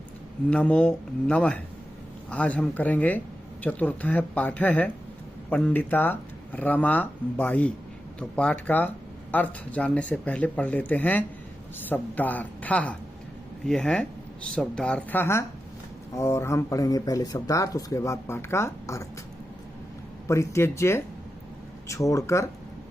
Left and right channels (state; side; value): normal; both; correlation 0.90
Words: नमो नमः। आज हम करेंगे चतुर्थ पाठ है पंडिता रमाबाई। तो पाठ का अर्थ जानने से पहले पढ़ लेते हैं शब्दार्थ। ये है शब्दार्थ और हम पढ़ेंगे पहले शब्दार्थ, उसके बाद पाठ का अर्थ। परित्यज्य छोड़कर,